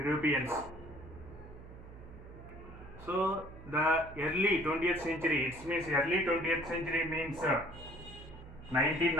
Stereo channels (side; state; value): right; noise; hum, 16 dB below the sound